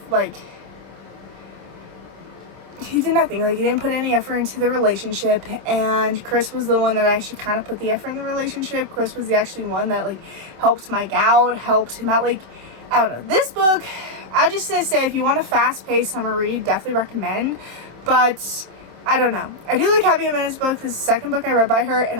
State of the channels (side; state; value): left; late; 26 ms